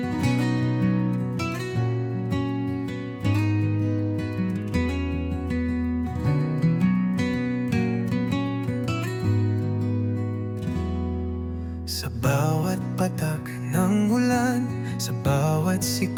Sa bawat patak ng ulan, sa bawat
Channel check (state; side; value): identical; both; correlation 1.00